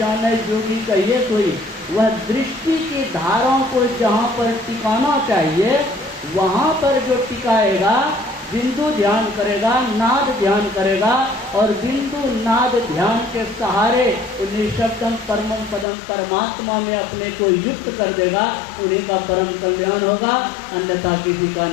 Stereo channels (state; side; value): drops out; right; at 15.9 s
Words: जोगी कहिए कोई। वह दृष्टि की धाराओं को जहाँ पर टिकाना चाहिए वहाँ पर जो टिकाएगा, बिंदु ध्यान करेगा, नाद ध्यान करेगा, और बिंदु नाद ध्यान के सहारे निशब्दम परमम पदम परमात्मा में अपने को युक्त कर देगा, उन्हीं का परम कल्याण होगा, अन्यथा किसी का